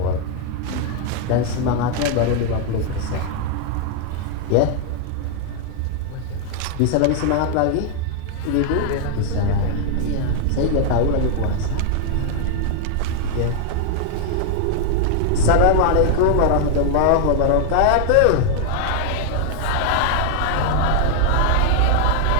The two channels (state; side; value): different; both; correlation 0.00